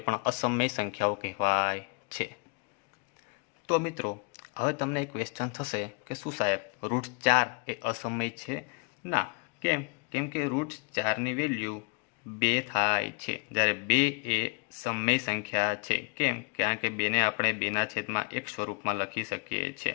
પણ અસમય સંખ્યાઓ કહેવાય છે. તો મિત્રો, હવે તમને એક ક્વેશ્ચન થશે કે શું સાહેબ √4 એ અસમય છે? ના. કેમ? કેમ કે √4ની વેલ્યુ 2 થાય છે, જ્યારે 2 એ સમય સંખ્યા છે. કેમ? કારણ કે 2ને આપણે 2ના છેદમાં 1 સ્વરૂપમાં લખી શકીએ છીએ.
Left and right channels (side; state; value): right; quieter; 31.2 dB